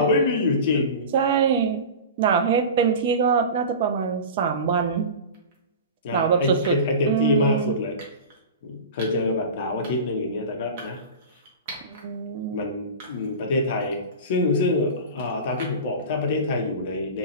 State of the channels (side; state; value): both; inverted; correlation -0.31